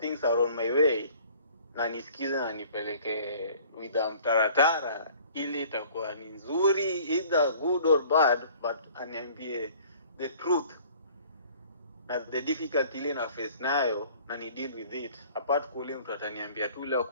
are on my way, na nisikize na nipeleke with mtaratara ili itakuwa ni nzuri, either good or bad, but aniambie the truth na the difficulty ile na face nayo, na ni deal with it. Apart kule mtu ataniambia tu leo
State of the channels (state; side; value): inverted; both; correlation -0.52